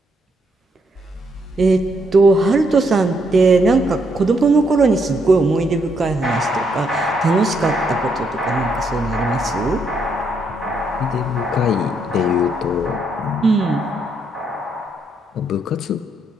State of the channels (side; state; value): both; normal; correlation 0.75